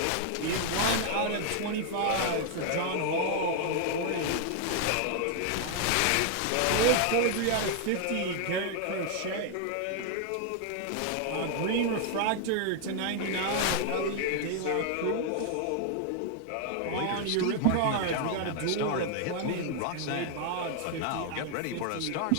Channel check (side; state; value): both; different; correlation 0.00